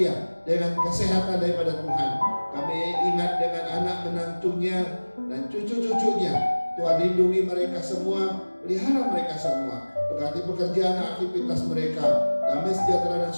dengan kesehatan daripada Tuhan. Kami ingat dengan anak menantunya dan cucu-cucunya. Tuhan lindungi mereka semua, pelihara mereka semua, berkati pekerjaan aktivitas mereka, damai sejahtera dan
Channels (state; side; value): inverted; both; correlation -1.00